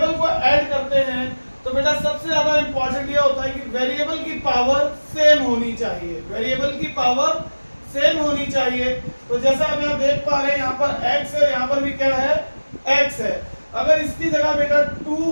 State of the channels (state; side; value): inverted; both; correlation -1.00